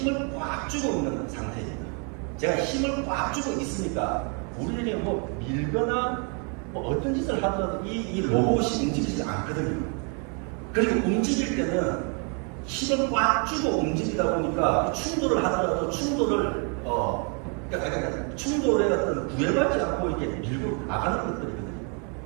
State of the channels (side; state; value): left; quieter; 37.0 dB